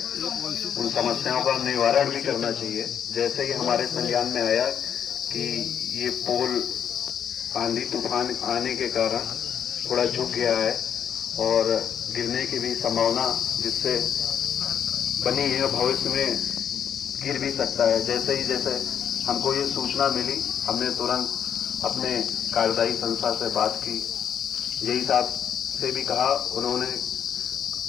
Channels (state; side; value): quieter; right; 8.6 dB